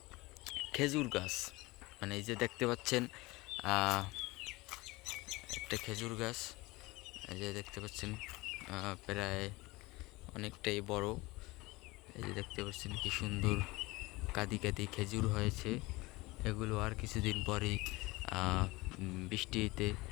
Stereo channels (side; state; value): right; quieter; 21.9 dB